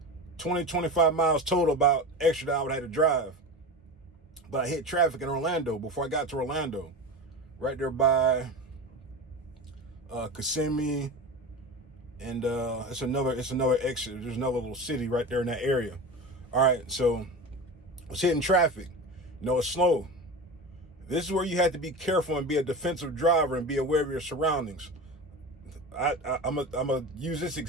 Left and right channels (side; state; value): both; normal; correlation 0.28